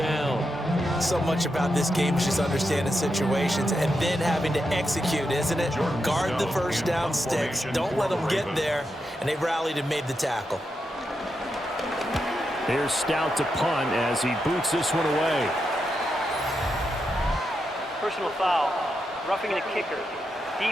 So much about this game is just understanding situations and then having to execute, isn't it? Guard the first down sticks. Don't let them get there. And they rallied and made the tackle. Here's Stout to punt as he boots this one away. Personal foul. Roughing the kicker.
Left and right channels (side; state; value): both; normal; correlation 0.85